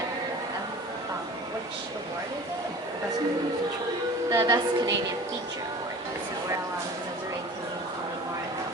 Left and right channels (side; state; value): both; normal; correlation 0.41